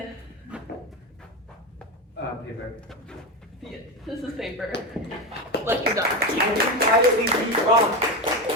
Paper. Yeah, this is paper. Lecture done. Why did we beat wrong?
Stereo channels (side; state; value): both; normal; correlation 0.17